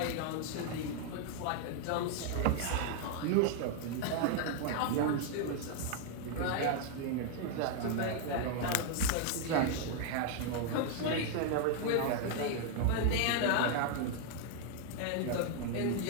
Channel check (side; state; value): both; different; correlation 0.00